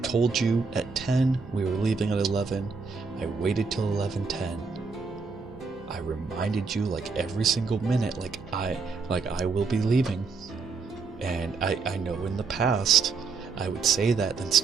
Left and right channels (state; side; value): quieter; left; 4.7 dB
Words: told you at 10, we were leaving at 11. I waited till 11:10. I reminded you like every single minute, like I will be leaving. And I know in the past I would say that, then